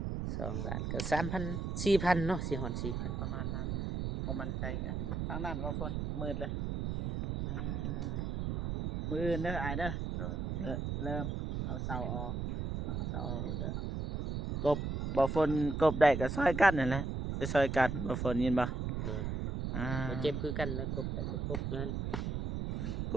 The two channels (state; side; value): noise; right; rumble, 2 dB below the sound